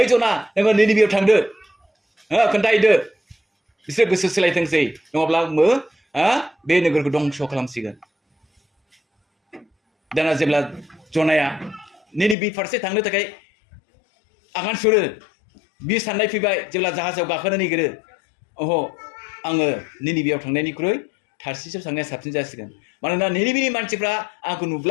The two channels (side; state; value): right; drops out; at 12.4 s